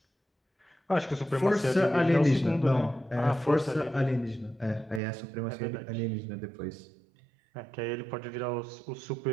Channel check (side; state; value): left; drops out; at 5.0 s